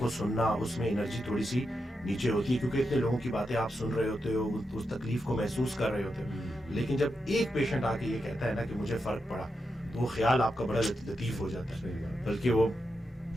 سننا, اس میں انرجی تھوڑی سی نیچے ہوتی ہے, کیونکہ اتنے لوگوں کی باتیں آپ سن رہے ہوتے ہو, اس تکلیف کو محسوس کر رہے ہوتے ہو. لیکن جب ایک پیشنٹ آ کے یہ کہتا ہے نا کہ مجھے فرق پڑا, تو وہ خیال آپ کا بڑا لطیف ہو جاتا ہے. بلکہ وہ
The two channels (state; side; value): normal; both; correlation 0.86